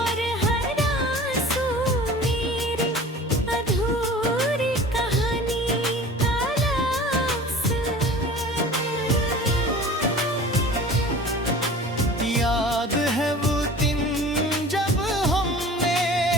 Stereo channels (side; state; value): both; normal; correlation 0.42